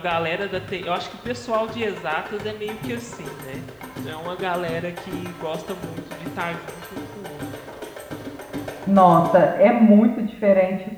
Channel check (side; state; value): both; identical; correlation 1.00